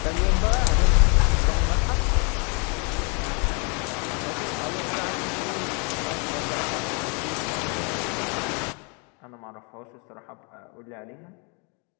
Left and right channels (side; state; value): right; quieter; 34.8 dB